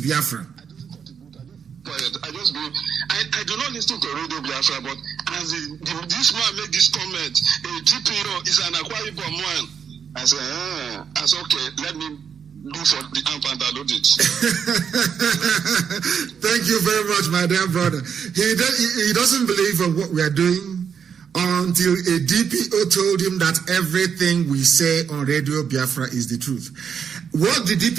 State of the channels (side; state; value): left; quieter; 7.2 dB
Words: Biafra. I do not listen to Radio Biafra, but as this man made this comment, a DPO is an Akwa Ibom man. I said, okay, let me do for the amp and download it. Thank you very much, my dear brother. He doesn't believe in what we are doing until a DPO told him that everything we say on Radio Biafra is the truth. What the